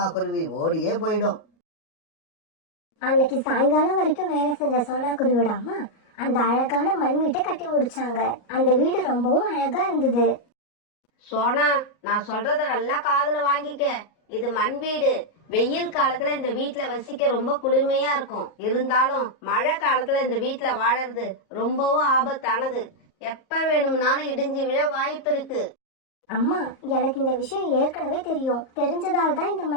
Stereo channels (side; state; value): right; late; 38 ms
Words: குருவி ஓடியே போயிடும். அன்னைக்கு சாயங்காலம் வரைக்கும் வேலை செஞ்ச சோனா குருவியோட அம்மா அந்த அழகான மண் வீட்டை கட்டி முடிச்சாங்க. அந்த வீடு ரொம்பவும் அழகா இருந்தது. சோனா, நான் சொல்றத நல்லா காதுல வாங்கிக்க. இது மண் வீடு. வெயில் காலத்துல இந்த வீட்டுல வசிக்க ரொம்ப குளுமையா இருக்கும். இருந்தாலும் மழை காலத்துல இந்த வீட்டுல வாழறது ரொம்பவும் ஆபத்தானது. எப்ப வேணும்னாலும் இடிஞ்சு விழ வாய்ப்பு இருக்கு. அம்மா, எனக்கு இந்த விஷயம் ஏற்கனவே தெரியும். தெரிஞ்சதால் தான் இந்த